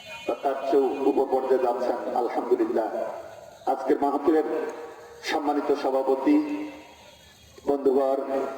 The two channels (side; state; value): both; identical; correlation 1.00